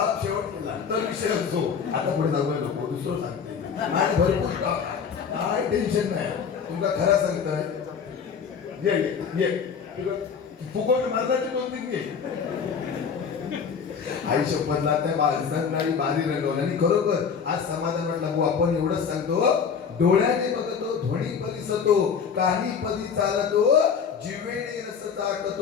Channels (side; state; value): right; quieter; 6.5 dB